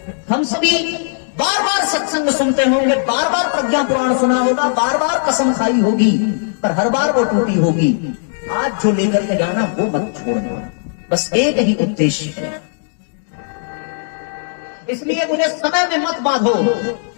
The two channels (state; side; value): silent; right; digital silence